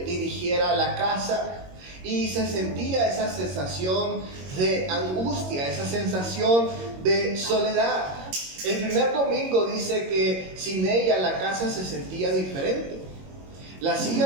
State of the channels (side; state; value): left; late; 22 ms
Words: la casa, y se sentía esa sensación de angustia, esa sensación de soledad. El primer domingo dice que sin ella la casa se sentía diferente. La